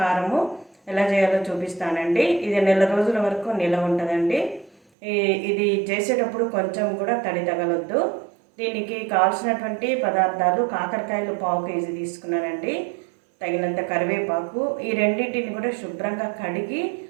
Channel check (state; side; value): drops out; left; at 4.8 s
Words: ఎలా చేయాలో చూపిస్తానండి. ఇది నెల రోజుల వరకు నిల్వ ఉంటుందండి. ఇది చేసేటప్పుడు కొంచెం కూడా తడి తగలొద్దు. దీనికి కావాల్సినటువంటి పదార్థాలు కాకరకాయలు 1/2 కేజీ తీసుకున్నానండి. తగినంత కరివేపాకు, ఈ రెండింటిని కూడా శుభ్రంగా కడిగి